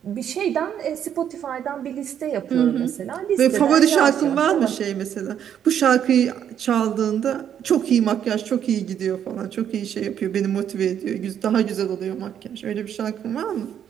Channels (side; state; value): left; quieter; 9.3 dB